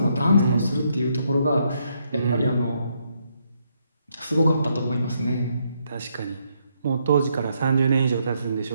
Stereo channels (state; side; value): inverted; both; correlation -0.76